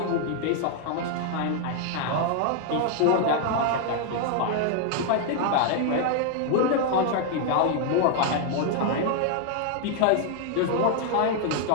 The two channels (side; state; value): both; different; correlation 0.00